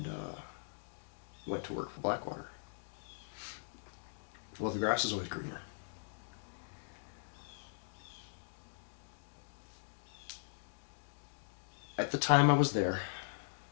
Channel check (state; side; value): silent; right; digital silence